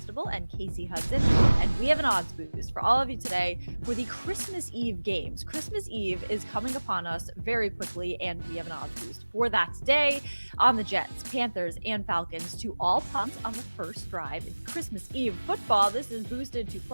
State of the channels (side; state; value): both; inverted; correlation -1.00